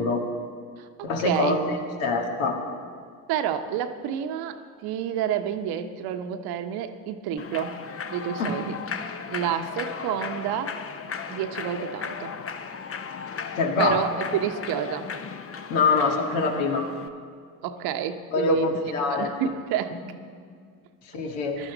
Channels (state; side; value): normal; both; correlation -0.03